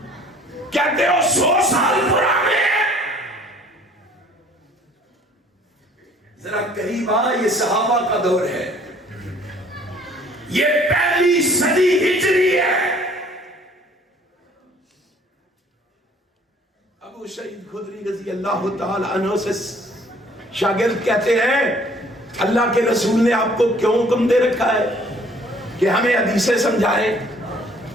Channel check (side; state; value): both; normal; correlation 0.56